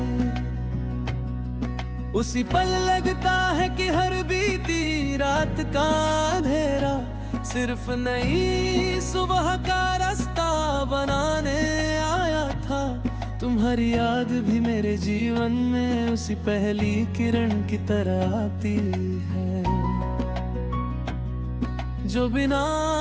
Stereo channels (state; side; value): identical; both; correlation 1.00